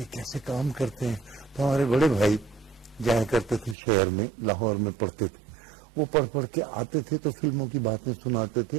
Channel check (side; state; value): left; drops out; at 3.8 s